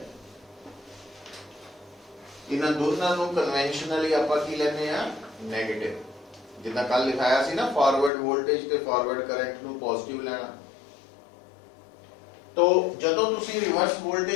ਇਹਨਾਂ ਦੋਨਾਂ ਨੂੰ ਕਨਵੈਨਸ਼ਨਲੀ ਆਪਾਂ ਕੀ ਲੈਨੇ ਆ ਨੈਗੇਟਿਵ, ਜਿੱਦਾਂ ਕੱਲ ਲਿਖਾਇਆ ਸੀ ਨਾ ਫਾਰਵਰਡ ਵੋਲਟੇਜ ਤੇ ਫਾਰਵਰਡ ਕਰੰਟ ਨੂੰ ਪੋਜ਼ਿਟਿਵ ਲੈਣਾ। तो ਜਦੋਂ ਤੁਸੀਂ ਰਿਵਰਸ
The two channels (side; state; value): right; drops out; at 8.1 s